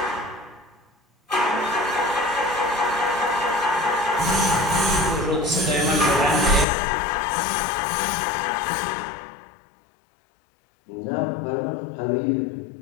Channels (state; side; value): drops out; right; at 6.7 s